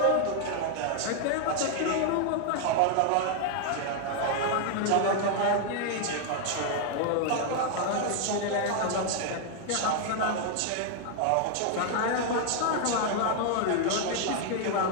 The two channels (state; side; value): different; both; correlation 0.00